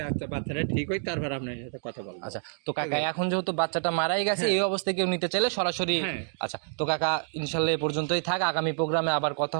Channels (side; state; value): left; silent; digital silence